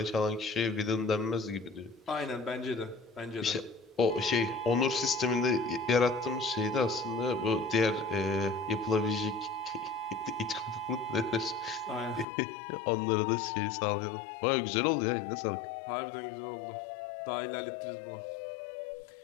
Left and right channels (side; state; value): right; drops out; at 12.2 s